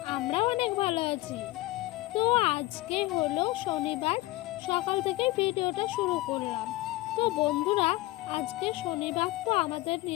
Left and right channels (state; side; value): quieter; right; 19.1 dB